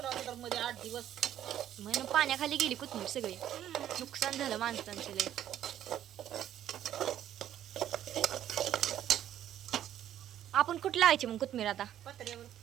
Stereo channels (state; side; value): quieter; left; 11.4 dB